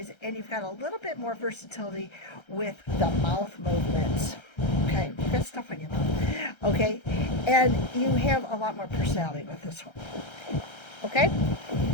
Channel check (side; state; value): right; late; 1.3 ms